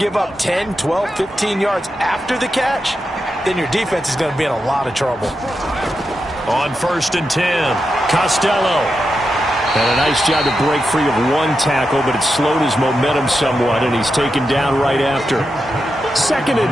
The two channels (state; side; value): normal; both; correlation 0.88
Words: give up 10, 12, 15 yards after the catch, then your defense is going to be in a lot of trouble. On 1st and 10, Costello. And a nice job to break free of 1 tackle, but it slowed his momentum somewhat, and he's taken down right after. 2nd